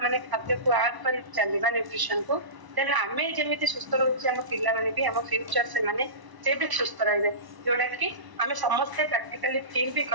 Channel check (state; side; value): late; left; 1.0 ms